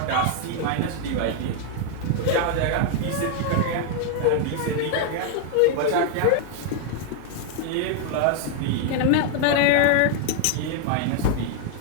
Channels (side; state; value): both; different; correlation 0.00